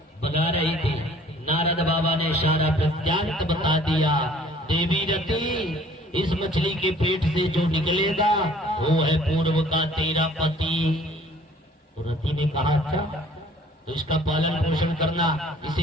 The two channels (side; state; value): both; normal; correlation 0.54